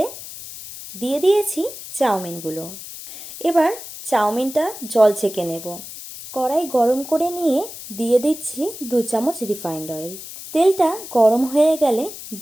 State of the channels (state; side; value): noise; left; hiss, 12 dB below the sound